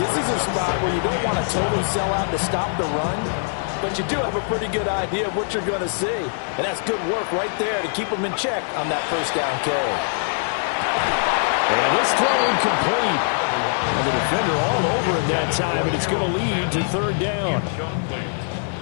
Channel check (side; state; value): right; silent; 56 dB below the other